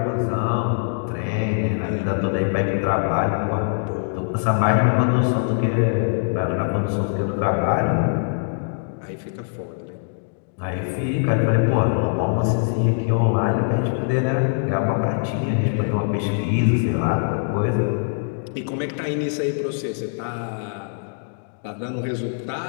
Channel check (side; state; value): right; silent; digital silence